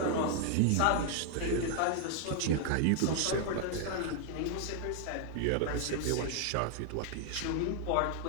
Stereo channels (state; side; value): different; both; correlation 0.00